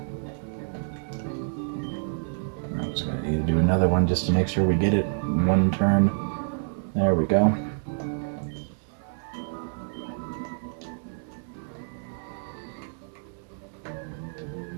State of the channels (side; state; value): left; silent; digital silence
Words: I'm just going to need to do another one just to make sure we get it in one turn. There we go.